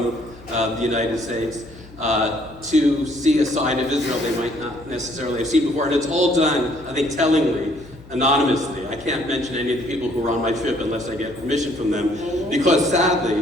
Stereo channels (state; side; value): noise; left; hum, 21 dB below the sound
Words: the United States to see a side of Israel they might not necessarily have seen before. And it's all done, I think, tellingly, anonymously. I can't mention any of the people who were on my trip unless I get permission from them, because